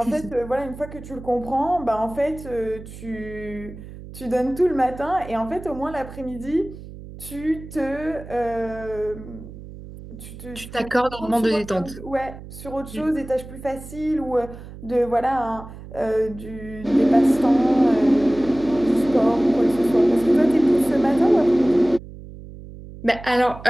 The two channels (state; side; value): noise; right; hum, 15 dB below the sound